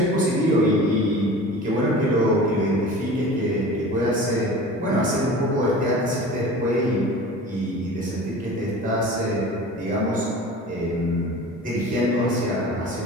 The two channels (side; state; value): both; normal; correlation 0.38